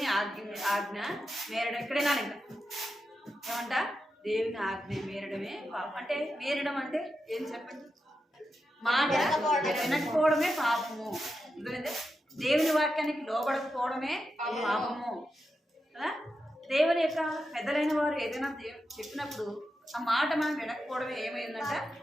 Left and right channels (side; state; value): both; normal; correlation 0.88